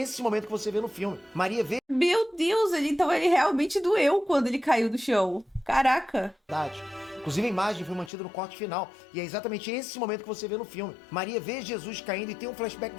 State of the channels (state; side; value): drops out; right; at 8.1 s